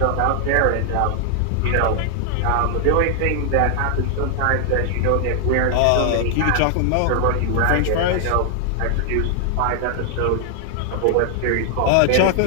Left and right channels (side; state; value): both; different; correlation 0.00